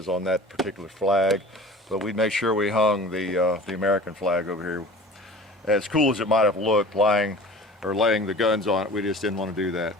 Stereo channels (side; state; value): both; normal; correlation 0.41